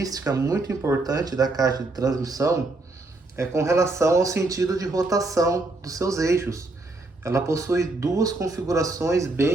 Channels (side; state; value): left; quieter; 3.1 dB